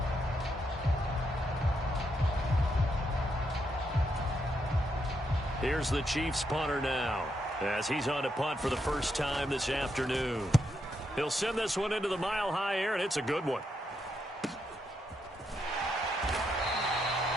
Here's the Chiefs punter now as he's on to punt for the first time this afternoon. He'll send this one into the mile-high air, and it's a good one.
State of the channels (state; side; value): normal; both; correlation 0.80